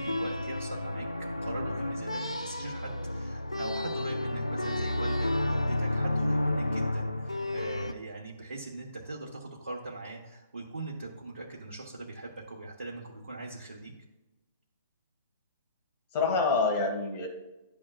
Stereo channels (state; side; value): inverted; both; correlation -0.70